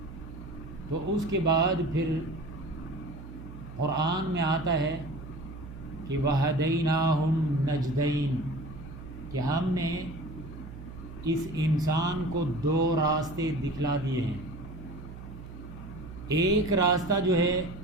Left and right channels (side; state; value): right; noise; hum, 13 dB below the sound